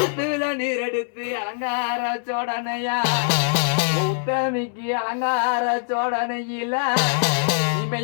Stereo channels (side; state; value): right; silent; digital silence